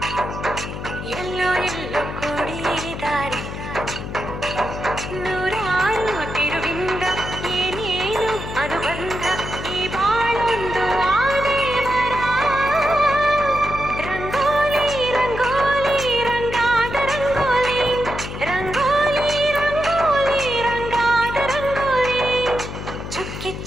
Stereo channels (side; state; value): left; noise; hum, 8 dB below the sound